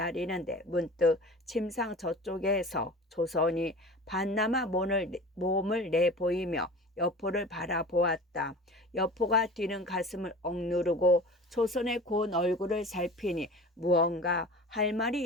문득 침상 저쪽에서 조선이 반나마 몸을 내보이며 여포를 바라보았다. 여포가 뛰는 가슴을 억누르고 조선의 고운 얼굴을 살피니 무언가 할 말이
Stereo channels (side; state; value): both; normal; correlation 0.38